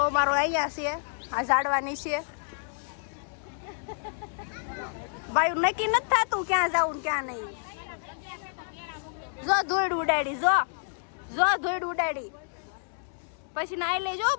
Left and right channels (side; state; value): right; silent; digital silence